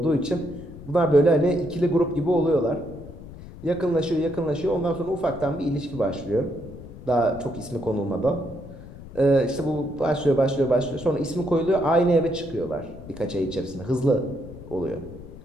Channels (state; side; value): noise; left; rumble, 15 dB below the sound